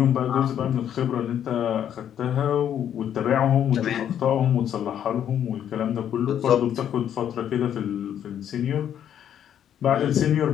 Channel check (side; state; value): right; quieter; 9.8 dB